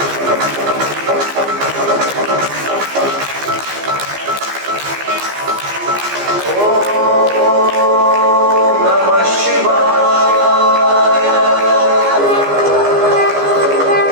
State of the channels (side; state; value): left; late; 14 ms